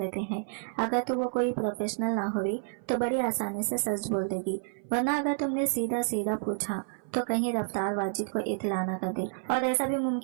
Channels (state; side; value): silent; left; 56 dB below the other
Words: हैं। अगर तो वो कोई प्रोफेशनल ना हुई तो बड़ी आसानी से सच बोल देगी, वरना अगर तुमने सीधा सीधा पूछा तो कहीं रफ्तार वाजिद को इत्तला न कर दे, और ऐसा भी